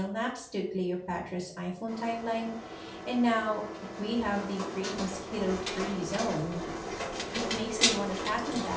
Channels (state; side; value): identical; both; correlation 1.00